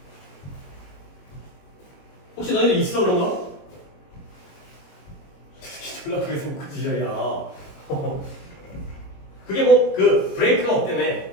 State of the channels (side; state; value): right; late; 21 ms